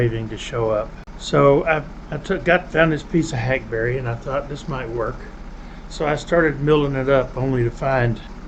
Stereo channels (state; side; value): identical; both; correlation 1.00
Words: to show up. So I found this piece of hackberry and I thought this might work. So I started milling it up only to find